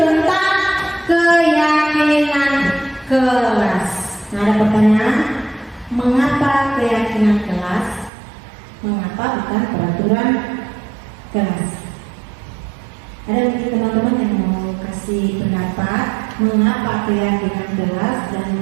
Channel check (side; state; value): left; drops out; at 8.1 s